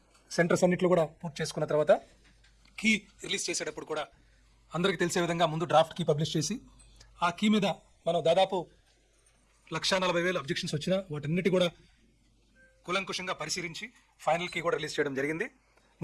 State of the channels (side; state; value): both; identical; correlation 1.00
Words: సెంటర్స్ అన్నింటిలో కూడా పూర్తి చేసుకున్న తర్వాత కీ రిలీజ్ చేసేటప్పుడు కూడా అందరికీ తెలిసే విధంగా ముందు డ్రాఫ్ట్ కీ పబ్లిష్ చేసి ఆ కీ మీద మనం దాదాపు 1,40,000 అబ్జెక్షన్స్ వచ్చినా వాటన్నిటి కూడా కూలంకుషంగా పరిశీలించి ఫైనల్ కీ కూడా రిలీజ్ చేయడం జరిగింది.